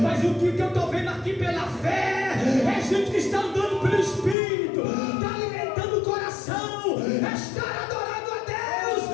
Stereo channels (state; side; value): drops out; right; at 4.4 s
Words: Mas o que eu estou vendo aqui pela fé é gente que está andando pelo Espírito, está alimentando o coração, está adorando a Deus,